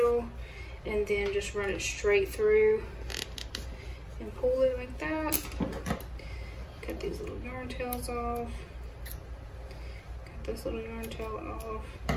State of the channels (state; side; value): identical; both; correlation 1.00